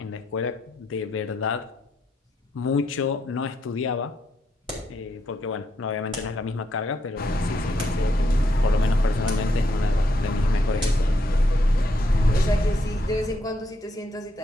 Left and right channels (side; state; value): both; normal; correlation 0.78